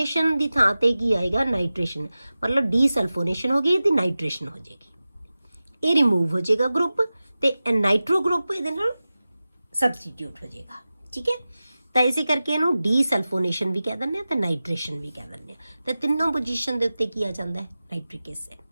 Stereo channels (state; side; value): inverted; both; correlation -0.96